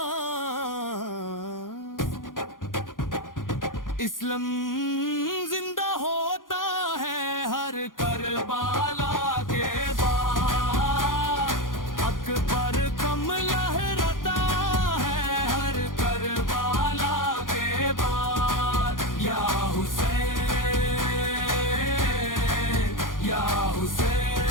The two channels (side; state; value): right; late; 0.89 ms